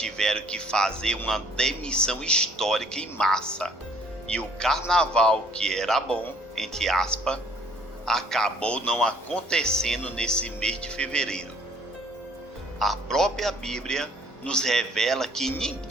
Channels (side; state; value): both; normal; correlation 0.58